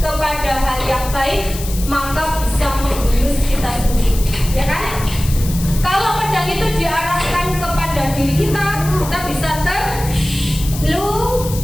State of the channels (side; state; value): left; noise; hiss, 11 dB below the sound